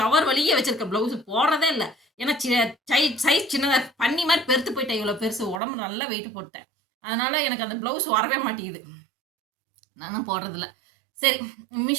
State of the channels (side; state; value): left; drops out; at 5.6 s